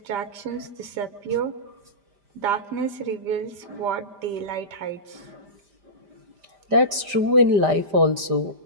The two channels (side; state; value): left; late; 5.0 ms